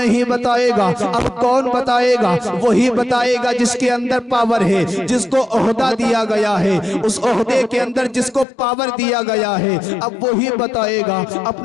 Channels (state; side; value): drops out; right; at 8.5 s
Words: بتائے گا۔ اب کون بتائے گا؟ وہی بتائے گا جس کے اندر پاور ہے، جس کو عہدہ دیا گیا ہے، اس عہدے کے اندر جس کو پاور دیا گیا ہے، اب وہی بتائے گا۔